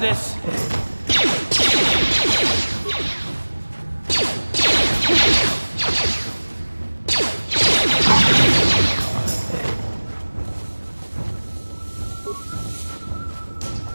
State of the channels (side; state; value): both; inverted; correlation -1.00